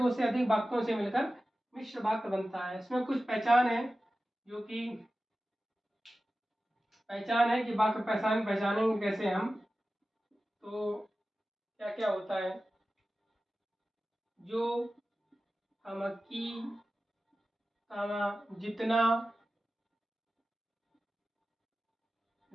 से अधिक वाक्यों से मिलकर मिश्र वाक्य बनता है। इसमें कुछ पहचान है, जो कि पहचान है कि वाक्य पहचानेंगे कैसे हम। तो क्या क्या होता है, जो, हम, की, जितना,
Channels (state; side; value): normal; both; correlation 0.95